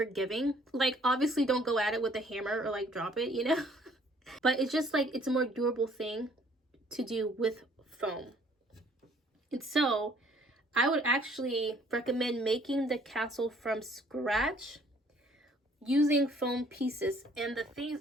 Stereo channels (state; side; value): normal; both; correlation 0.60